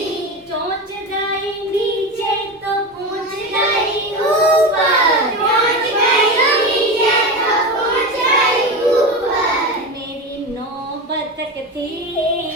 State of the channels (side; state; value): both; normal; correlation 0.22